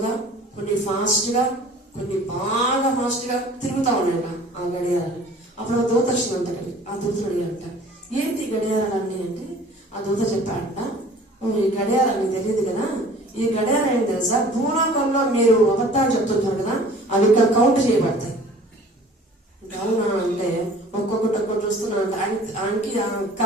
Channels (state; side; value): normal; both; correlation 0.48